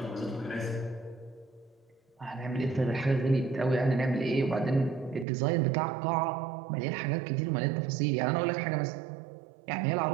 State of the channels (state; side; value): drops out; left; at 5.2 s